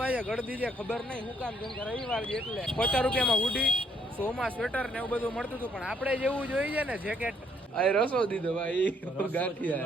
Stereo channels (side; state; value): both; normal; correlation 0.68